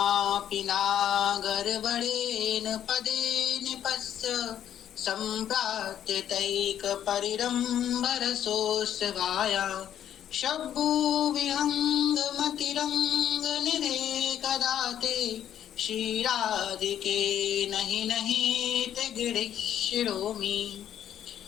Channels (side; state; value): right; quieter; 10.3 dB